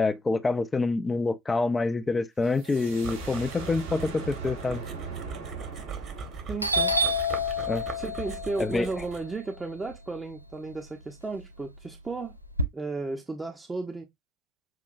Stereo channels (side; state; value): both; normal; correlation 0.53